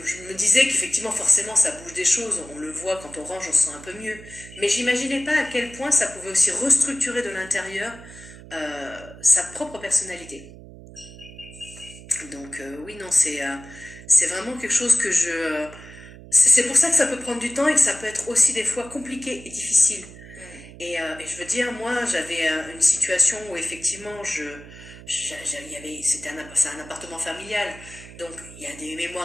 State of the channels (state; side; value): noise; right; hum, 17 dB below the sound